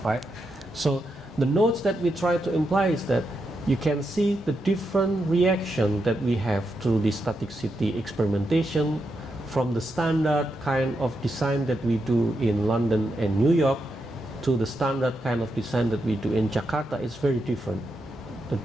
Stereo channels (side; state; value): both; normal; correlation 0.84